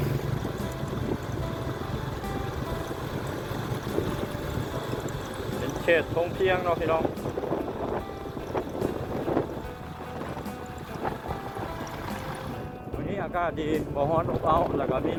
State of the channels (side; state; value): both; identical; correlation 1.00